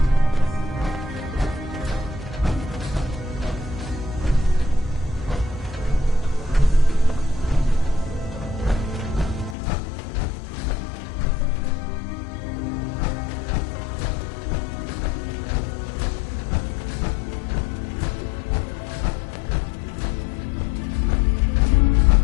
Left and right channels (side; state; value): right; drops out; at 9.6 s